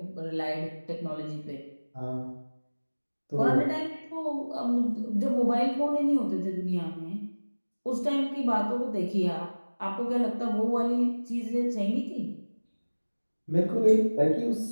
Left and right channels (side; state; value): both; inverted; correlation -1.00